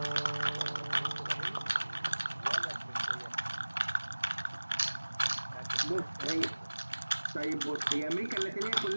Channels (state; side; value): inverted; both; correlation -1.00